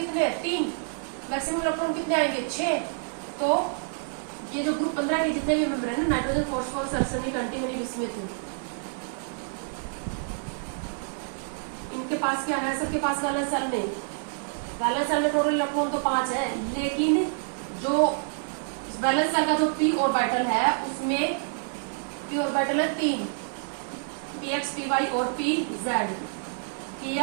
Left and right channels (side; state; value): left; silent; digital silence